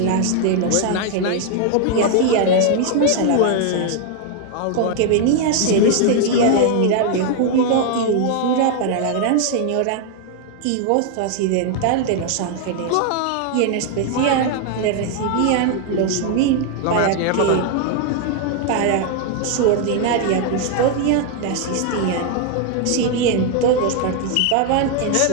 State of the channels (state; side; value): different; both; correlation 0.00